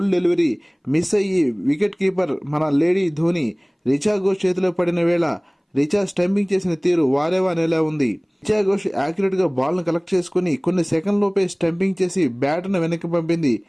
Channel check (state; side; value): identical; both; correlation 1.00